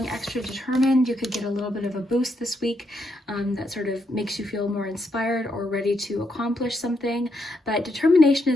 extra determined. You could get a little bit of a boost this week that sort of makes you feel more inspired or ready to accomplish something. But determination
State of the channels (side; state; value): both; normal; correlation 0.79